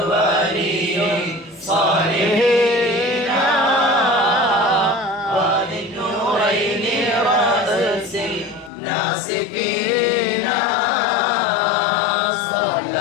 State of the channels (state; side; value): drops out; right; at 8.7 s